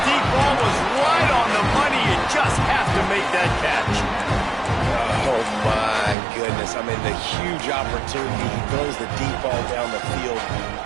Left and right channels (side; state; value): left; drops out; at 6.2 s